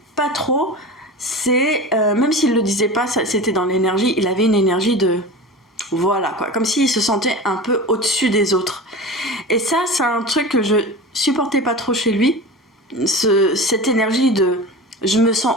pas trop, c'est, même s'il le disait pas, c'était dans l'énergie, il avait une énergie de... Voilà, quoi, comme s'il se sentait un peu au-dessus des autres. Et ça, c'est un truc que je supportais pas trop chez lui, cette énergie de je me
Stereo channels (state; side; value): normal; both; correlation 0.31